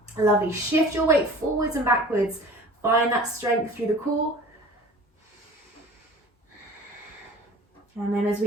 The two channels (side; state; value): both; normal; correlation 0.44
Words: Lovely. Shift your weight forwards and backwards. Find that strength through the core. And then as